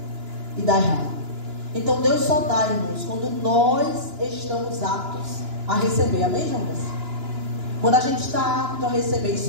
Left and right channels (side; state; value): left; late; 2.9 ms